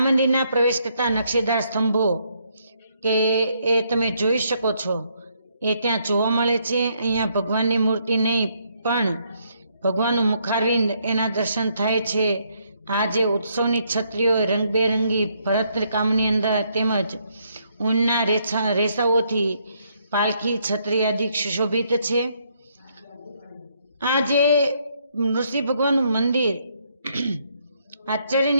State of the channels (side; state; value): both; inverted; correlation -0.72